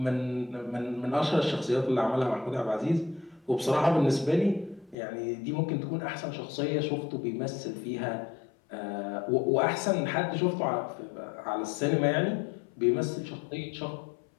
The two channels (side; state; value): right; drops out; at 5.0 s